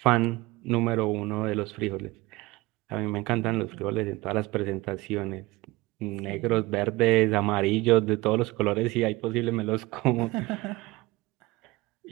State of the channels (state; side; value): quieter; left; 21.4 dB